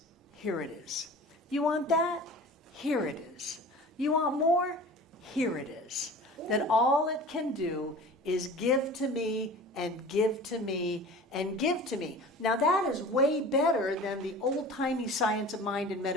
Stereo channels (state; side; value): normal; both; correlation 0.40